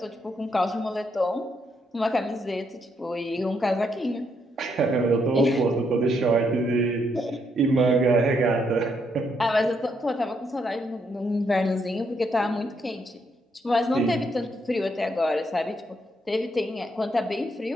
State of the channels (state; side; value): normal; both; correlation 0.76